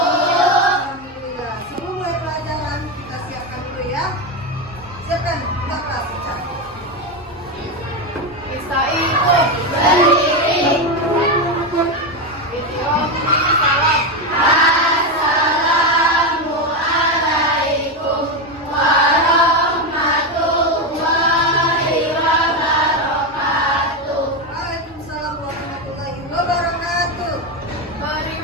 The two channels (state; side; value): normal; both; correlation 0.12